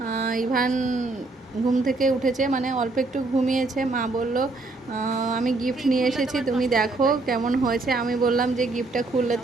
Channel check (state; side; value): quieter; left; 3.3 dB